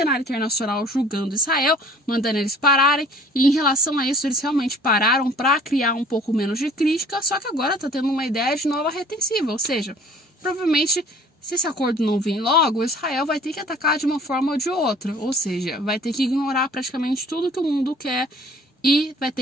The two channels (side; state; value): both; normal; correlation 0.51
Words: internacional julgando Israel, mandando eles pararem, e em relação a isso eles realmente pararam para criar um pouco menos de crítica, só que agora tá tendo uma ideia de nova retensiva, ou seja, provavelmente se esse acordo não vir logo, Israel vai ter que atacar de uma forma ou de outra, ou seja, vai ter que ignorar praticamente tudo que o mundo quer e vai